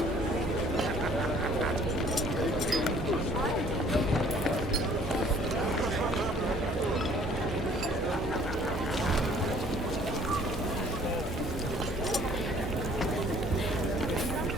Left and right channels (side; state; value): both; normal; correlation 0.56